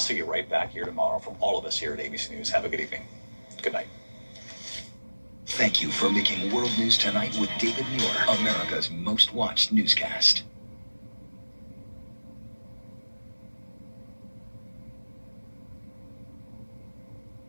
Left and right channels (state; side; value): inverted; both; correlation -1.00